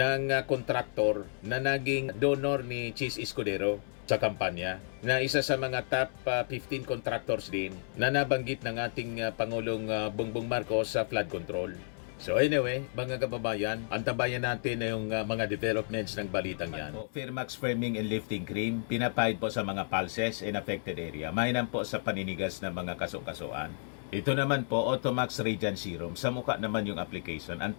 kontraktor na naging donor ni Chis Escudero sa kampanya na isa sa mga top 15 contractors din na nabanggit ng ating Pangulong Bongbong Marcos sa flood control. So anyway, mga kababayan, antabayan natin na yung mga developments ng balitang yan. Firmax Firming and Lifting Cream, pinapahid po sa mga pulses in affected area. Mainam po sa paninigas ng mga kaso-kasuan. Ito naman po, Automax Radiant Serum. Sa mukha naman yung application,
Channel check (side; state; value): right; silent; 57 dB below the other